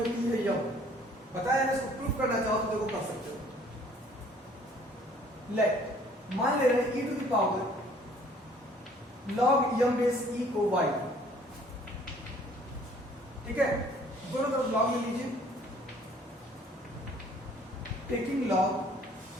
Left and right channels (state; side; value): normal; both; correlation 0.57